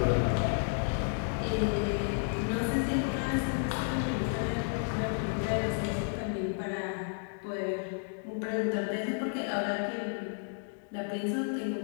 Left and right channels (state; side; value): silent; right; 56 dB below the other